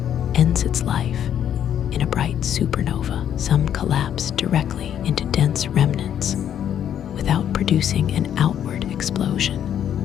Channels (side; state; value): right; quieter; 9.8 dB